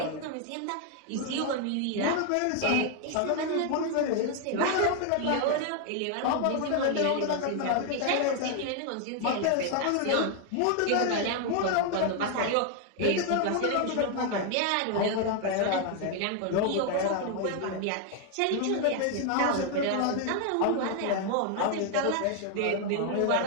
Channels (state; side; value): different; both; correlation 0.00